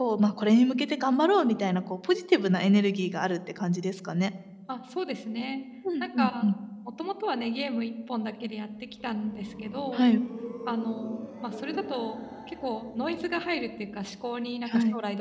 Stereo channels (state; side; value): identical; both; correlation 1.00